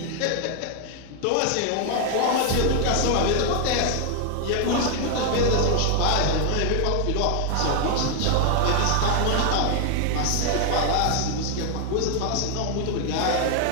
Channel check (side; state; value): both; different; correlation 0.00